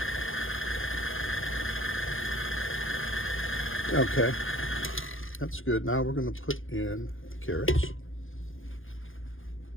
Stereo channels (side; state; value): right; late; 0.59 ms